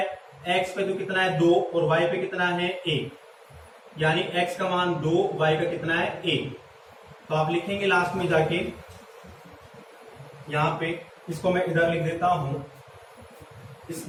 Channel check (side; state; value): both; identical; correlation 1.00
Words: x पे तो कितना है 2 और y पे कितना है 1, यानी x का मान 2, y का कितना है 1। तो आप लिखेंगे लास्ट में जाके, यहां पे इसको मैं इधर लिख देता हूं, इस